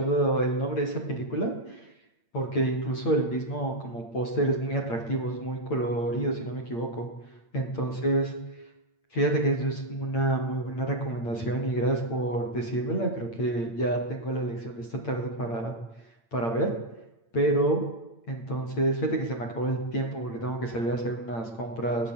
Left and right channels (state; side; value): late; right; 8.8 ms